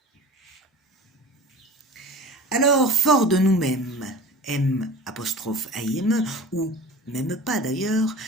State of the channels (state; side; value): normal; both; correlation 0.38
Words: Alors, fort de nous-mêmes, M''AIME, ou même pas d'ailleurs,